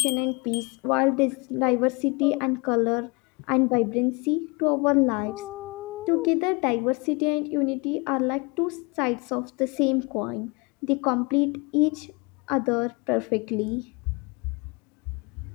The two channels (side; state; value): right; quieter; 28.6 dB